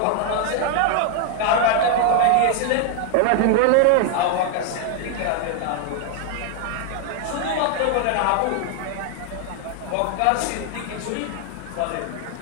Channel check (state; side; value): different; both; correlation 0.00